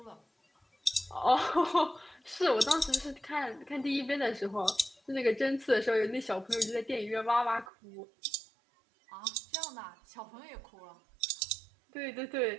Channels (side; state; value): left; drops out; at 7.7 s